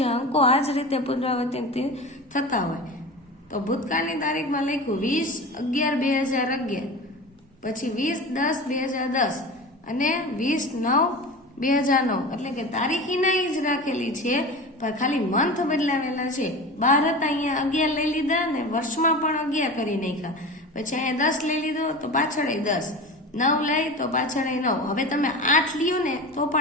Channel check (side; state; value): both; normal; correlation 0.31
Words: અંકો આ જ રીતે પુનરાવર્તિત થતા હોય. તો ભૂતકાળની તારીખમાં લખ્યું 20/11/2011, પછી 20/10/2010 અને 20/9/2009. એટલે કે તારીખીના જ રાખેલી છે પણ ખાલી મંથ બદલાવેલા છે. 12 હતા અહીંયા 11 લઈ લીધા ને વર્ષમાં પણ 11 કરી નાખ્યા. પછી અહીંયા 10 લઈ લીધો તો પાછળ 10, 9 લઈ તો પાછળ 9. હવે તમે 8 લ્યો ને તો